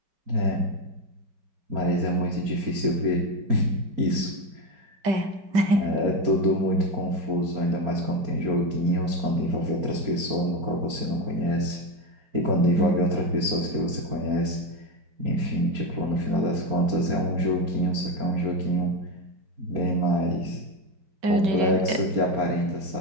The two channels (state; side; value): late; left; 5.1 ms